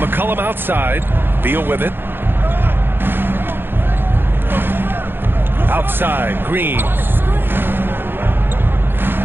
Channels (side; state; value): left; late; 0.10 ms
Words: McCollum outside. Beal with it. Outside, Green.